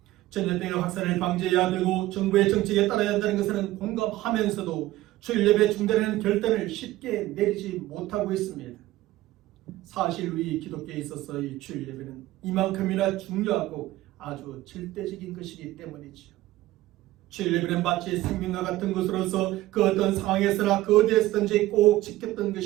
전염병의 확산을 방지해야 되고 정부의 정책에 따라야 한다는 것은 공감하면서도 주일 예배 중단하는 결단을 쉽게 내리지 못하고 있습니다. 사실 우리 기독교에 있어서 이 주일 예배는 이만큼이나 중요하고 아주 절대적인 것이기 때문이지요. 주일 예배는 마치 생명과 같은 것으로서 그 어떤 상황에서나 그 어디에서든지 꼭 지켰던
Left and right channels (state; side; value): quieter; left; 16.4 dB